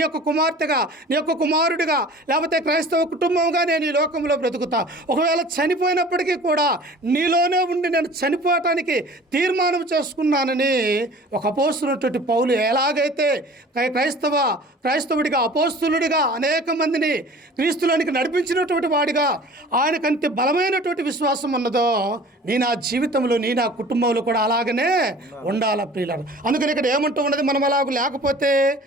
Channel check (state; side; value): normal; both; correlation 0.44